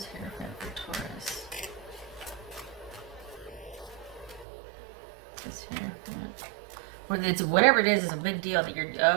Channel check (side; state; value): left; drops out; at 4.5 s